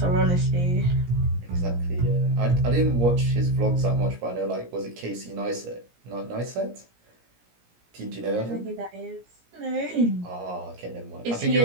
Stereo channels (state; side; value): late; left; 17 ms